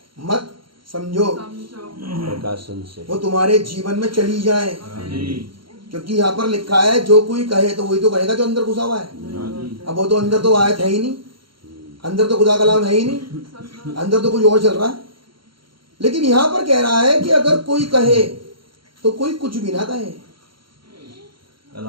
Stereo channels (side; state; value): left; late; 0.73 ms